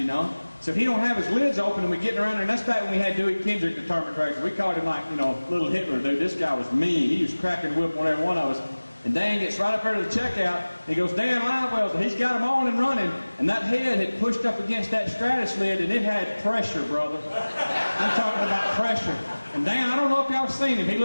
know. So if he don't have his lids open, and we're getting around there, and that's back when we had Dewey Kendrick, the tournament director. We called him like, little Hitler, dude. This guy was mean. He was cracking the whip on every one of us. And Dan gets right up there to the checkout. He goes, Dan live wells, and he's got them on and running. And that head had pushed up against that Stratus lid, and it had pressure, brother. I'm talking about pressure. And Dan, I don't know if y'all seen him. He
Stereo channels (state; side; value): inverted; both; correlation -1.00